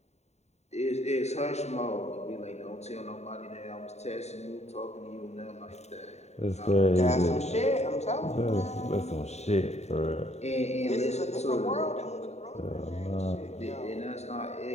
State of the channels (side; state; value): right; late; 0.32 ms